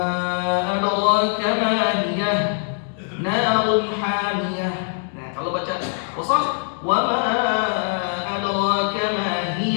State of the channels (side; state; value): right; silent; 60 dB below the other